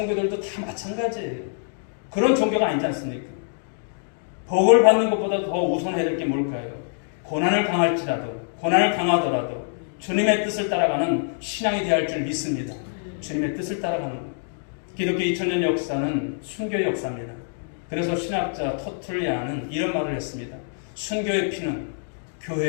다 마찬가지예요. 그런 종교가 아니지 않습니까? 복을 받는 것보다 더 우선해야 될 게 뭘까요? 고난을 당하더라도 주님의 뜻을 따라가는 신앙이 되어야 할 줄 믿습니다. 주님의 뜻을 따라가는 것. 기독교 2000년 역사는 순교의 역사입니다. 그래서 신학자 터툴리아는 이런 말을 했습니다. 순교의 피는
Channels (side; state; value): right; silent; digital silence